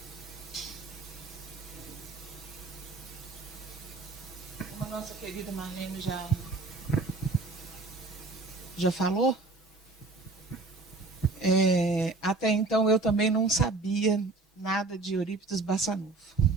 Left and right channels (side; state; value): left; quieter; 3.5 dB